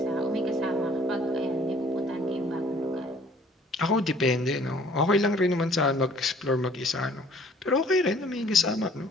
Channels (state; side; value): normal; both; correlation 0.56